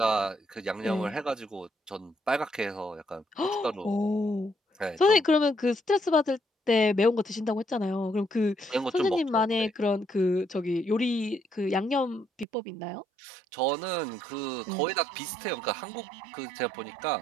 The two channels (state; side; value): drops out; left; at 12.5 s